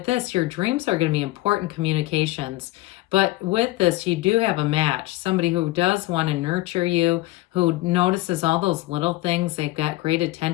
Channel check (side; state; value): right; quieter; 19.0 dB